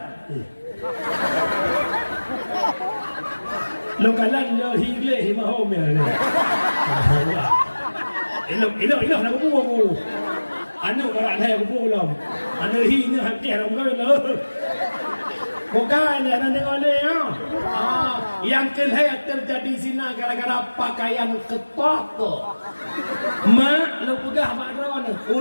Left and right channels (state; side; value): inverted; both; correlation -1.00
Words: lo kalan lo hingle himahom ya Allah nak bubu anu orang saya kupulam anu hinya hati orang kau bukan ada dengan dia yang kelihatan terjadi zina gara-gara pakaian ketat mak lo pegah bakron